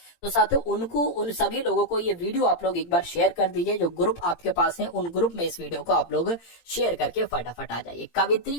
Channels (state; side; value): late; right; 18 ms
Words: तो साथियों उनको, उन सभी लोगों को ये वीडियो आप लोग एक बार शेयर कर दीजिए, जो ग्रुप आपके पास है उन ग्रुप में इस वीडियो को आप लोग शेयर करके फटाफट आ जाइए।